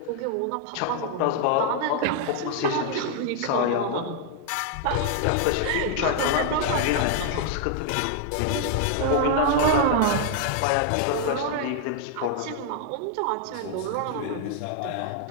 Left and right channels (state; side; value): different; both; correlation 0.00